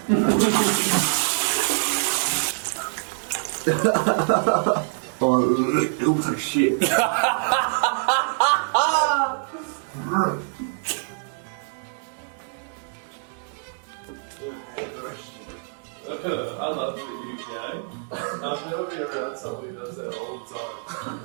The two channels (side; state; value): left; silent; 62 dB below the other